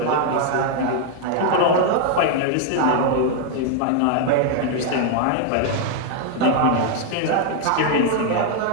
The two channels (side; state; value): both; different; correlation 0.00